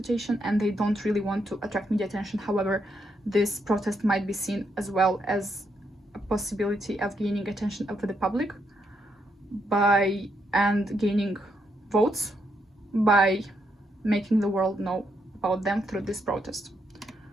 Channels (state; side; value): normal; both; correlation 0.78